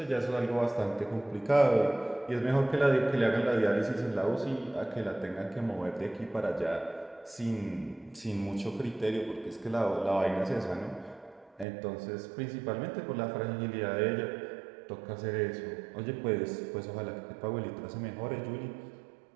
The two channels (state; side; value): drops out; left; at 11.7 s